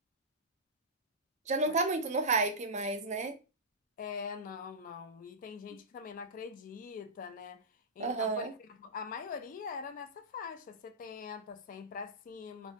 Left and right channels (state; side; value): normal; both; correlation -0.14